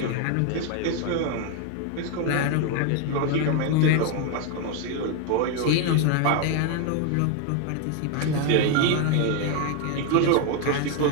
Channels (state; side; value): different; both; correlation 0.01